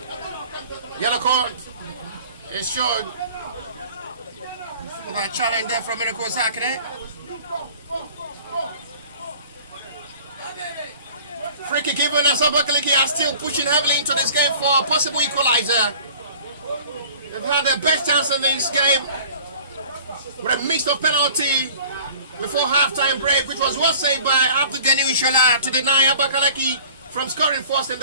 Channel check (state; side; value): inverted; both; correlation -0.47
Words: yellow card is shown for that challenge there from Miracle Zekere. Free kick given as Abakaliki are still pushing heavily into this game for a possible equalizer. They've had their best chance in this game with a mix of penalty before halftime break, which was well saved by Abdugani Ishola to deny Abakaliki from scoring first in